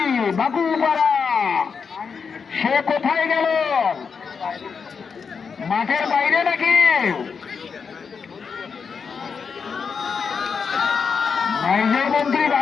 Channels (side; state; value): right; quieter; 5.8 dB